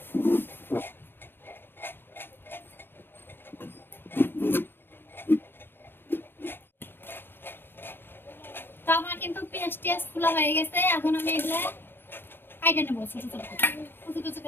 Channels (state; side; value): late; right; 0.10 ms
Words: তো আমার কিন্তু পেঁয়াজ টিয়াজ খোলা হয়ে গেছে, এখন আমি এগুলা কাটে নেবো ছোট ছোট করে, কুচি কুচি